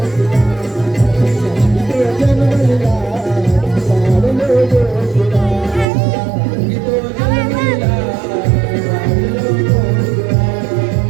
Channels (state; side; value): drops out; left; at 5.9 s